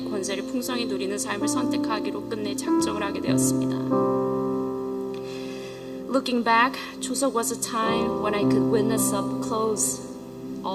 권세를 풍성히 누리는 삶을 선택하기로 끝내 작정을 하게 되었습니다. Looking back, Chuseok was a time when I could witness up close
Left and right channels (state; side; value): identical; both; correlation 1.00